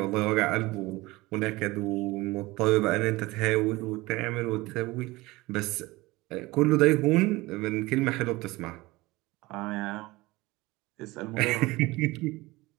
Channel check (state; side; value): quieter; left; 20.8 dB